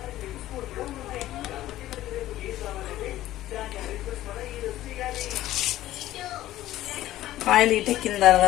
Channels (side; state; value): right; quieter; 14.6 dB